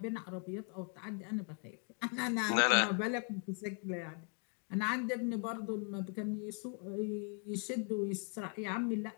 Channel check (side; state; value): right; quieter; 38.6 dB